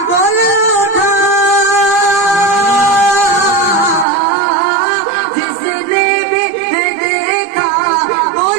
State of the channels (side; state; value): left; drops out; at 4.0 s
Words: بول اٹھا جس نے بھی دیکھا